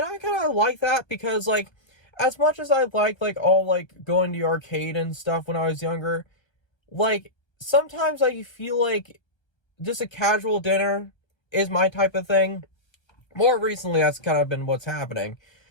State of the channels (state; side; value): late; right; 1.2 ms